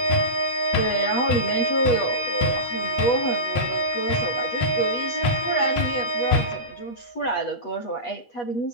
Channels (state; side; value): late; right; 8.2 ms